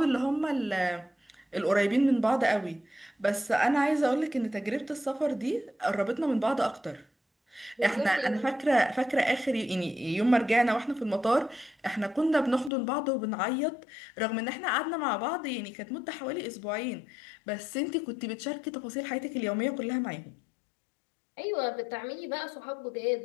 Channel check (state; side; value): drops out; right; at 12.7 s